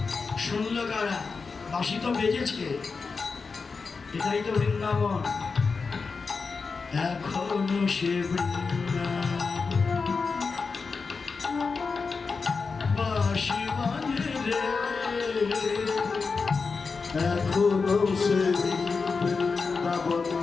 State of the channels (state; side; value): quieter; right; 4.7 dB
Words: শুনলো কারা? বাঁশি তো বেজেছে, এটাই তো বৃন্দাবন। এখনো সে বাঁশি বাজে রে, এখনো সে বৃন্দাবন